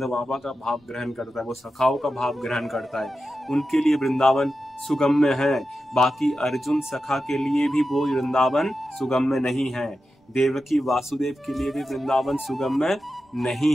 बाबा का भाव ग्रहण करता है, वो सखाओं का भाव ग्रहण करता है। उनके लिए वृंदावन सुगम्य है। बाकी अर्जुन सखा के लिए भी वो वृंदावन सुगम्य नहीं है। देवकी वासुदेव के लिए भी वृंदावन सुगम्य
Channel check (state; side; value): normal; both; correlation 0.91